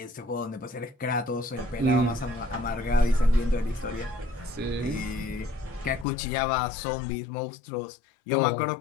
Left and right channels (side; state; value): right; drops out; at 6.1 s